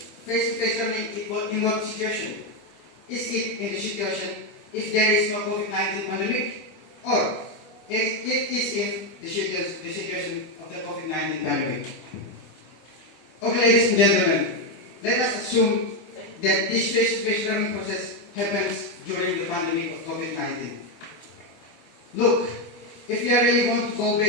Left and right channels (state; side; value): late; right; 25 ms